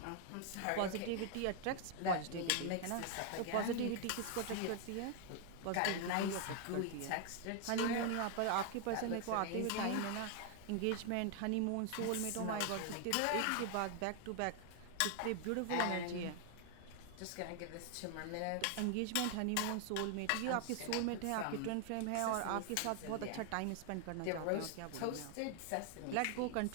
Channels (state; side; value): different; both; correlation 0.00